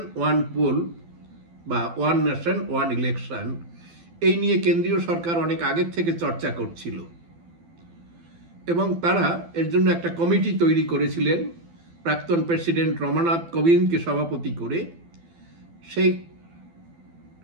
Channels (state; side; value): late; left; 12 ms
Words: ওয়ান পোল বা ওয়ান নেশন ওয়ান ইলেকশন, এই নিয়ে কেন্দ্রীয় সরকার অনেক আগের থেকে চর্চা করছিল এবং তারা এর জন্য একটা কমিটি তৈরি করেছিলেন প্রাক্তন প্রেসিডেন্ট রমানাথ কোবিন্দকে সভাপতি করে। সেই